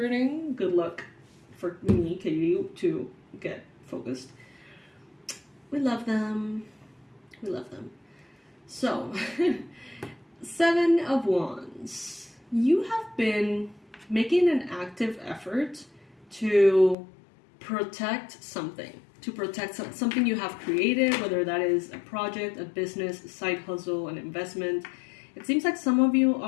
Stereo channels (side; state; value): right; drops out; at 16.9 s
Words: Good luck for me, Katie, to get focused. We love them. We love them. So, 7 of Wands. You have been making an active effort to protect something. To protect something you have created, whether that is a project, a business, a side hustle, an investment. It seems like some of you